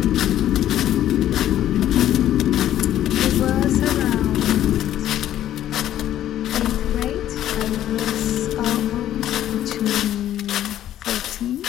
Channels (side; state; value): right; quieter; 12.1 dB